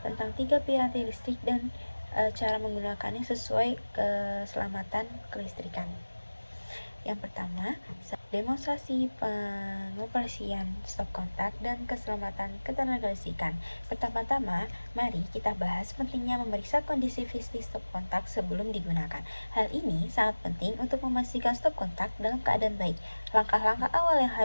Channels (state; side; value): inverted; both; correlation -1.00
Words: tentang 3 piranti listrik dan cara menggunakannya sesuai keselamatan kelistrikan. Yang pertama, demonstrasi pengoperasian stop kontak dan keselamatan ketenagalistrikan. Pertama-tama, mari kita bahas pentingnya memeriksa kondisi fisik stop kontak sebelum digunakan. Hal ini sangat penting untuk memastikan stop kontak dalam keadaan baik. Langkah-langkah awal yang